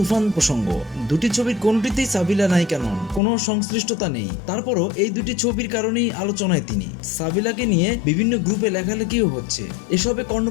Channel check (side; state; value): right; drops out; at 3.2 s